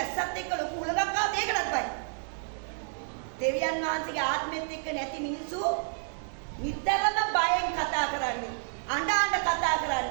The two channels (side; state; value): left; silent; 58 dB below the other